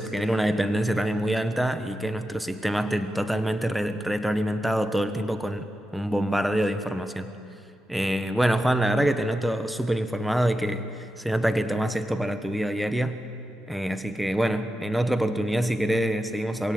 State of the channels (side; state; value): both; normal; correlation 0.90